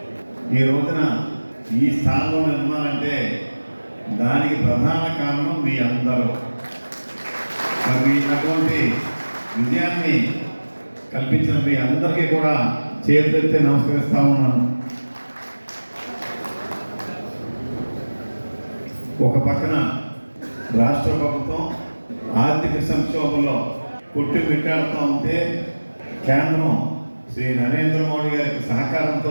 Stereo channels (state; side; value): inverted; both; correlation -1.00